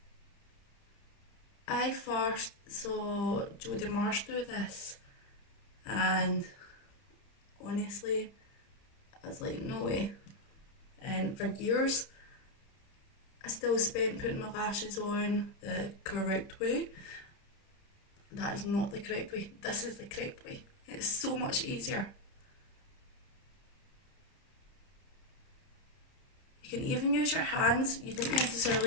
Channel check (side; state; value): right; late; 30 ms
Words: I first saw Jodie Marsh do this, and honestly, I was like, no way. And for years, I still spent putting my lashes on the correct way. That is not the correct way. This is the correct way. It's so much easier. You can even use your hands. You don't